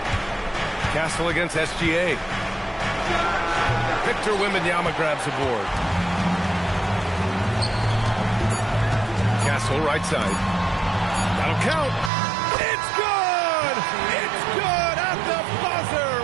Castle against SGA. Victor Wembanyama grabs the board. Castle right side. That'll count. It's good! It's good at the buzzer!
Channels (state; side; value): drops out; left; at 12.1 s